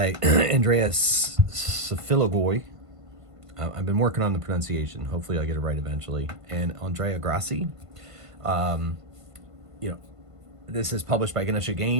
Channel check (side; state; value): left; late; 1.5 ms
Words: Andreas Safilogoi. I've been working on the pronunciation. Hopefully I'll get it right eventually. And Andrea Grassi. This is published by Ganesha